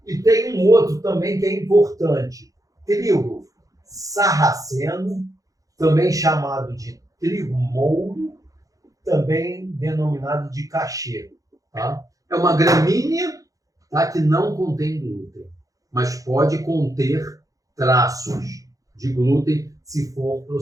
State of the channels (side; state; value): left; late; 0.17 ms